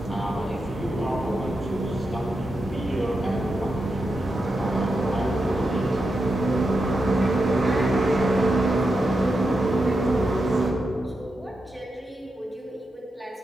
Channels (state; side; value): normal; both; correlation 0.87